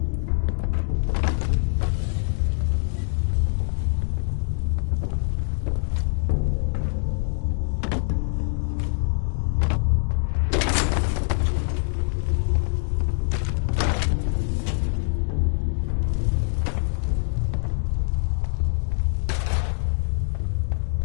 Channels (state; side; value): silent; right; digital silence